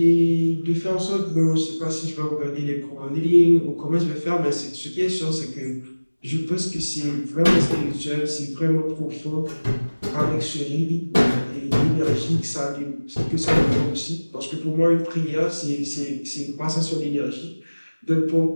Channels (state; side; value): inverted; both; correlation -1.00